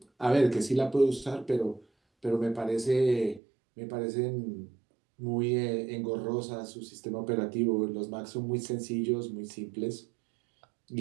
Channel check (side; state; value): left; drops out; at 3.4 s